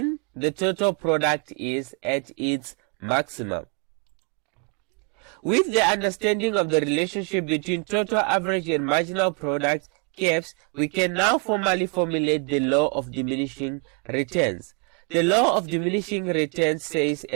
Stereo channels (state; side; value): quieter; left; 36.7 dB